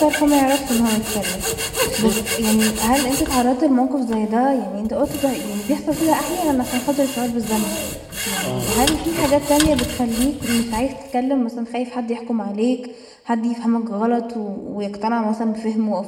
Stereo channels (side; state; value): both; identical; correlation 1.00